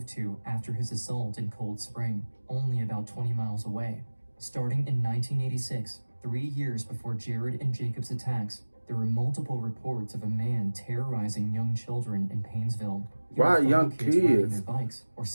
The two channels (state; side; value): inverted; both; correlation -1.00